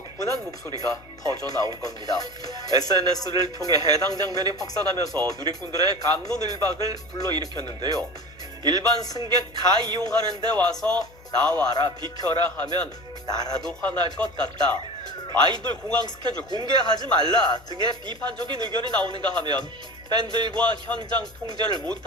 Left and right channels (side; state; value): left; noise; hum, 24 dB below the sound